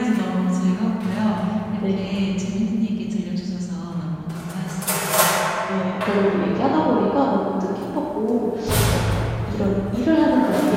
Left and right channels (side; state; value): both; identical; correlation 1.00